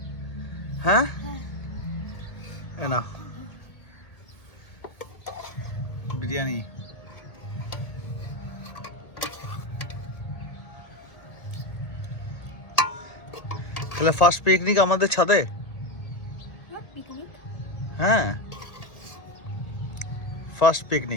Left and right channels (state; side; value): late; right; 1.8 ms